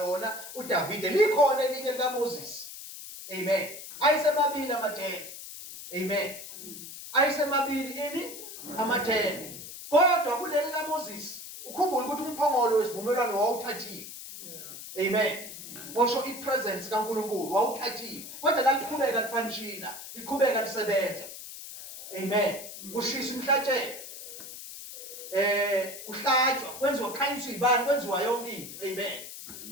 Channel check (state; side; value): noise; left; hiss, 12 dB below the sound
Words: uDavide. Likhona elinye likaMoses. Amen. Ayisemabili amathende. Amen. Ayisemabili amathende. Kodwa kuleli kaMoses ukhumbula ukuthi umphongolo wesivumelwano wawuthathiwe. Amen. Washo ipresence kaNkulunkulu wawuthathiwe. Kodwa laliqhubeka lifanishina, liqhubeka lisebenza. Amen. Kushisa umhlatshelo. Kuhlatshwa, kwenziwa khanyiswa ibani, kwenziwa yonke into. Amen.